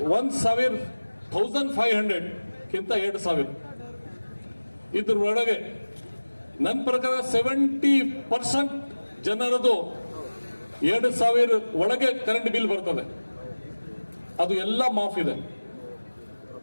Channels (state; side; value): inverted; both; correlation -1.00